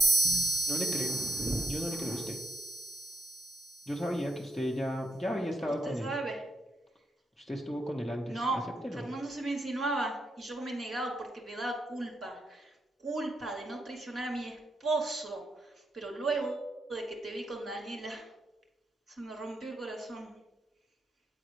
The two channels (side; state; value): both; normal; correlation 0.82